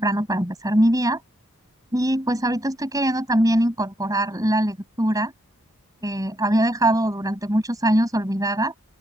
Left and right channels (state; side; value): normal; both; correlation 0.78